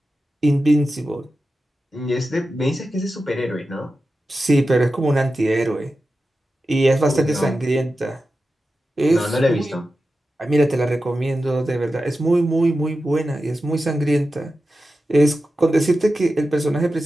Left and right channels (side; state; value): both; normal; correlation 0.92